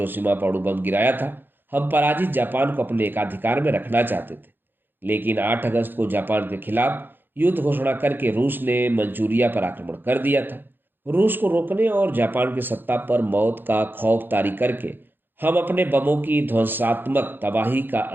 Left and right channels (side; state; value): left; late; 0.096 ms